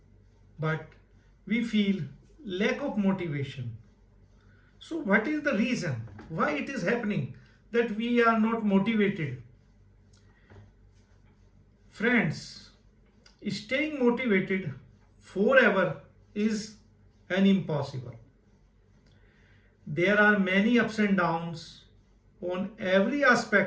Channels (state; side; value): identical; both; correlation 1.00